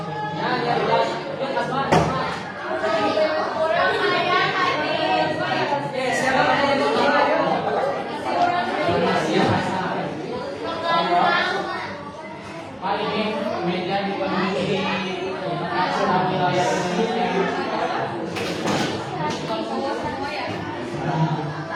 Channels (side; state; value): both; identical; correlation 1.00